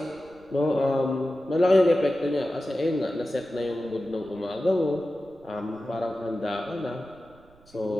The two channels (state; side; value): noise; right; rumble, 28 dB below the sound